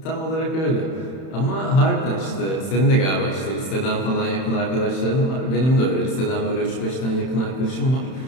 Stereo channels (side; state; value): right; late; 31 ms